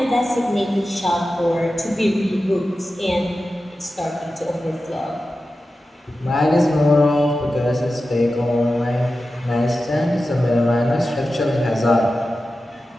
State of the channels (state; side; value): normal; both; correlation 0.93